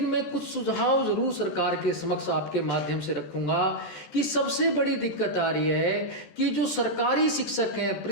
मैं कुछ सुझाव जरूर सरकार के समक्ष आपके माध्यम से रखूंगा कि सबसे बड़ी दिक्कत आ रही है कि जो सरकारी शिक्षक हैं,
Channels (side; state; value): right; late; 14 ms